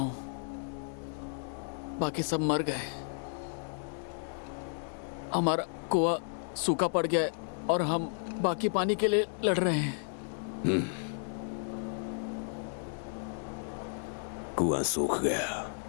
बाकी सब मर गए। हमारा कुआं सूखा पड़ गया है और हम बाकी पानी के लिए लड़ रहे हैं। कुआं सूख गया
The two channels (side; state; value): right; silent; 56 dB below the other